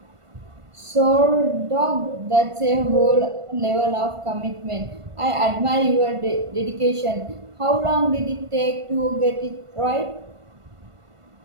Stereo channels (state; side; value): late; left; 1.5 ms